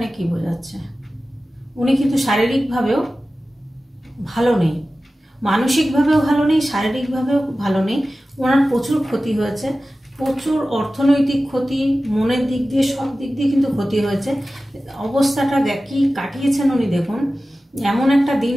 কি বোঝাচ্ছে, উনি কিন্তু শারীরিকভাবেও ভালো নেই, মানসিকভাবেও ভালো নেই, শারীরিকভাবেও ভালো নেই। ওনার প্রচুর ক্ষতি হয়েছে, প্রচুর অর্থনৈতিক ক্ষতি, মনের দিক দিয়ে, সব দিক দিয়ে কিন্তু ক্ষতি হয়েছে। অবস্থাটা কি কাটিয়েছেন উনি দেখুন। এমন একটা দিন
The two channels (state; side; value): normal; both; correlation 0.95